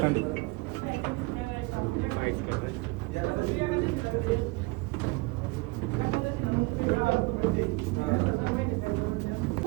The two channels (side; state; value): left; quieter; 25.1 dB